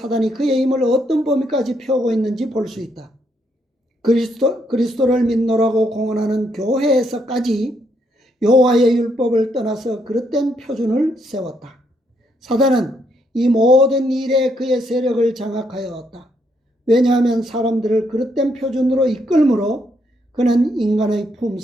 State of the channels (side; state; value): both; normal; correlation 0.75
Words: 그의 힘을 어떤 범위까지 펴고 있는지 볼 수 있다. 그리스도를 믿노라고 공언하는 교회에서까지 여호와의 율법을 떠나서 그릇된 표준을 세웠다. 사단은 이 모든 일에 그의 세력을 장악하여 왔다. 왜냐하면 사람들을 그릇된 표준으로 이끌므로 그는 인간의